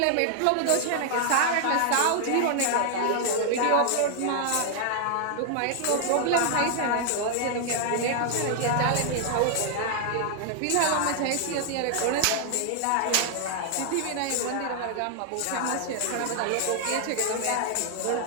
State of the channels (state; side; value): different; both; correlation 0.00